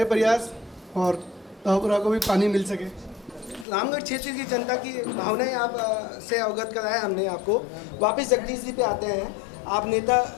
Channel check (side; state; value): right; drops out; at 3.7 s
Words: प्रयास और धावपुरा को भी पानी मिल सके। रामगढ़ क्षेत्र की जनता की भावनाएं आप से अवगत कराया हमने आपको। वापस जगदीश जी पे आते हैं। आप नेता